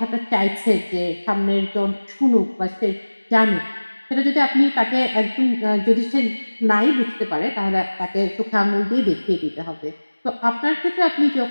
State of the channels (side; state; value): both; inverted; correlation -1.00